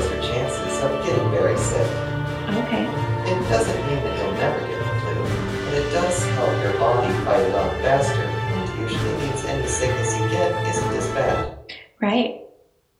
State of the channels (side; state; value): both; identical; correlation 1.00